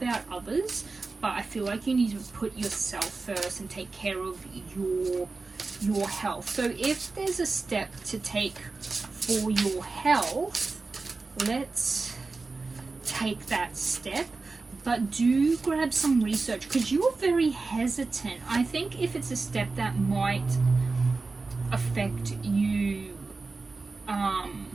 others, but I feel like you need to put yourself first and take care of your health. So if there's a step to take for your health, let's take that step. But do grab some research, because you're very hesitant. I think if it's a step that might affect you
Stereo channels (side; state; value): left; quieter; 3.9 dB